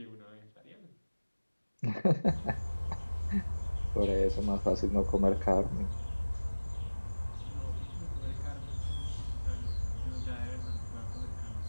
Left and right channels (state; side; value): inverted; both; correlation -1.00